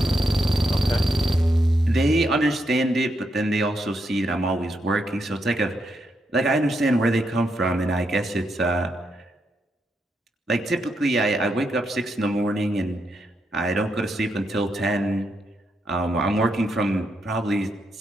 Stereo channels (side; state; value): both; normal; correlation 0.81